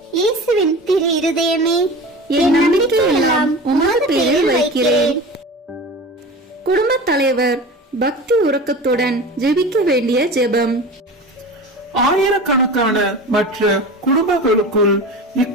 இயேசுவின் திரு இருதயமே, என் நம்பிக்கை எல்லாம் உமது பேரில் வைக்கிறேன். குடும்பத் தலைவர் பக்தி உறக்கத்துடன் ஜெபிக்க வேண்டிய ஜெபம். ஆயிரக்கணக்கான மற்ற குடும்பங்களுக்குள்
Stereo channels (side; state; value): both; normal; correlation 0.33